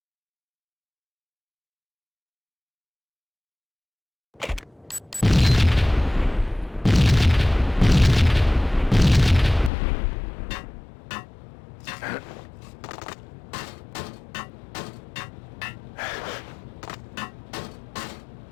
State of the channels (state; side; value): drops out; right; at 9.7 s